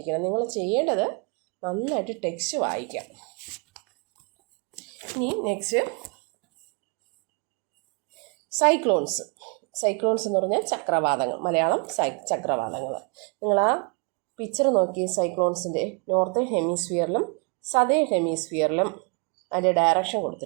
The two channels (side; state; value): left; quieter; 34.0 dB